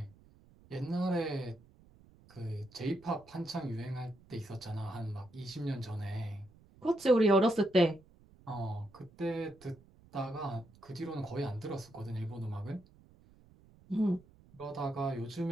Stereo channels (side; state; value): right; noise; rumble, 26 dB below the sound